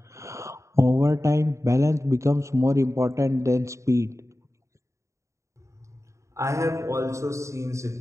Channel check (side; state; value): left; late; 0.14 ms